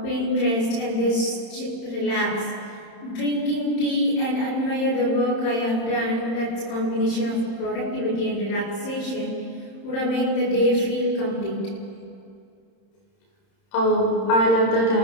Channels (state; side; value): late; right; 31 ms